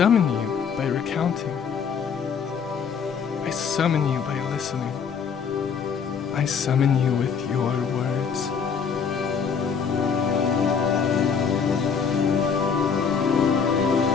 you by recounting. I summon you by listening. I summon you with your words.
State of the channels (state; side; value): quieter; right; 6.4 dB